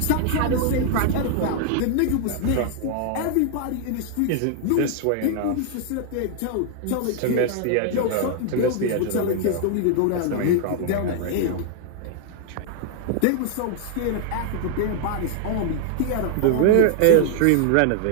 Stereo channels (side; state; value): both; different; correlation 0.00